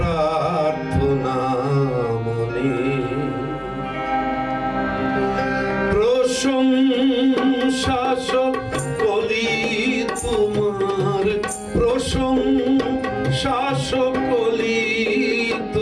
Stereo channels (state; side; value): identical; both; correlation 1.00